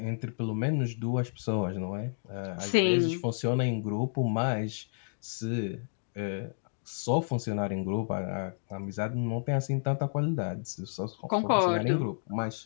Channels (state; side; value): silent; right; digital silence